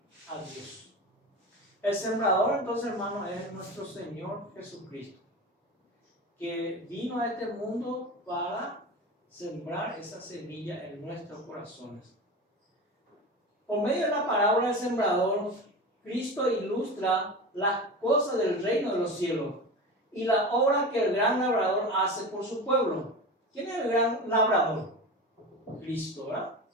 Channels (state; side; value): normal; both; correlation 0.28